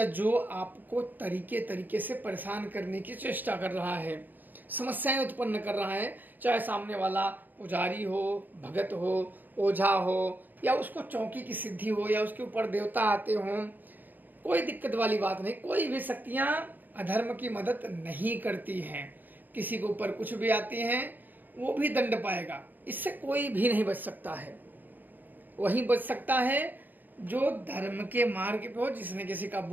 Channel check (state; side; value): late; left; 0.087 ms